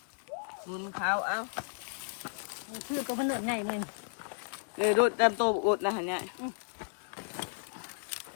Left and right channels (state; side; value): silent; right; digital silence